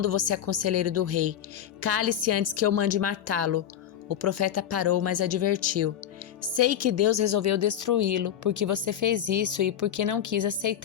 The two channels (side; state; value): right; quieter; 9.9 dB